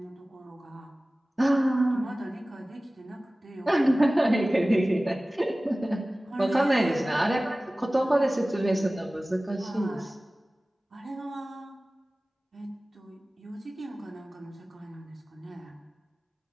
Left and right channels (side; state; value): both; normal; correlation 0.97